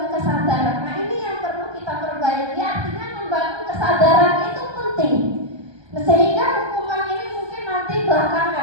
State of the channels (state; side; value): late; left; 1.2 ms